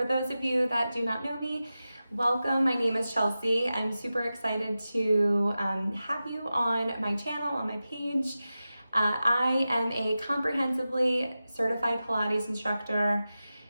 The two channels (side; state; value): both; inverted; correlation -0.94